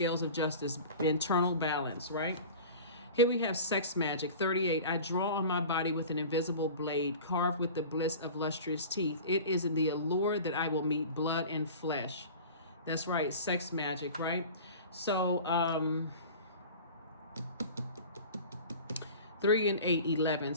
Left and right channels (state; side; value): inverted; both; correlation -0.38